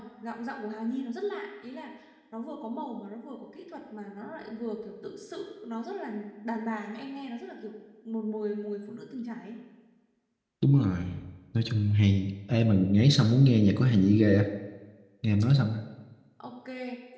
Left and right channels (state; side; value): identical; both; correlation 1.00